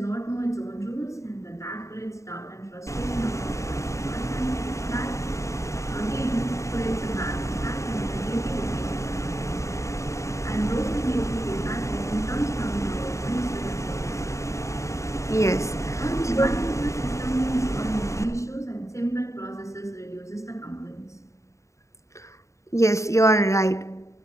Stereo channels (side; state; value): right; late; 0.15 ms